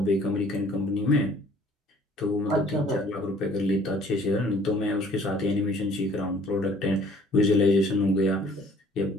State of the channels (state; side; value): normal; both; correlation 0.56